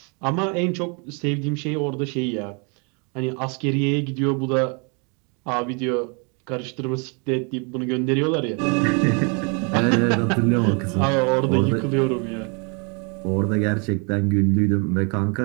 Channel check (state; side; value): quieter; left; 34.8 dB